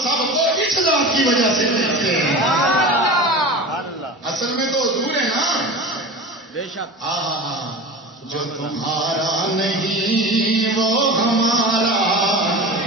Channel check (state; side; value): normal; both; correlation 0.32